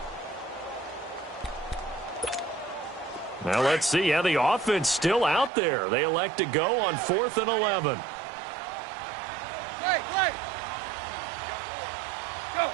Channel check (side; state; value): left; drops out; at 5.5 s